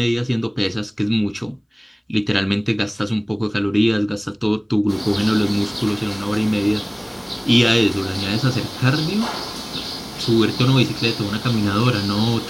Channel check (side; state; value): both; identical; correlation 1.00